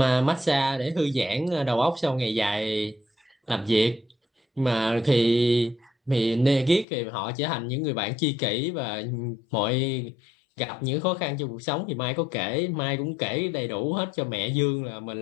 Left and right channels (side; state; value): right; drops out; at 6.9 s